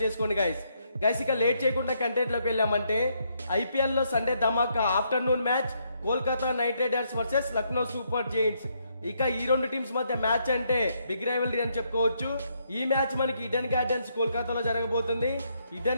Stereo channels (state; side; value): inverted; both; correlation -0.75